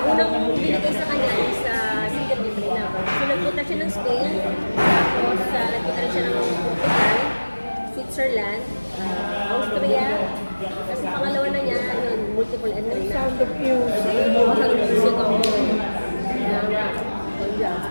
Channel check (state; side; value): inverted; both; correlation -1.00